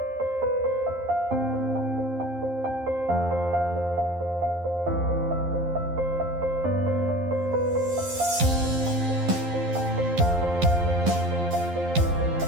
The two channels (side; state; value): left; late; 11 ms